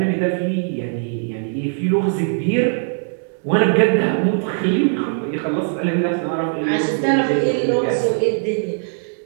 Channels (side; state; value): left; silent; 62 dB below the other